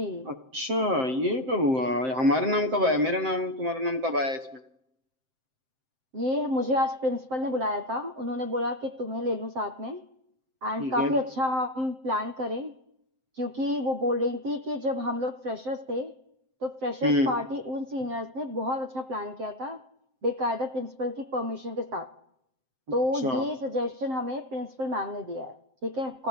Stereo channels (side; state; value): left; late; 7.7 ms